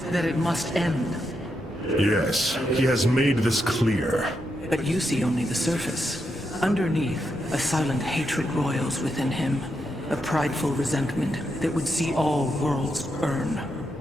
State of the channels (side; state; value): both; normal; correlation 0.83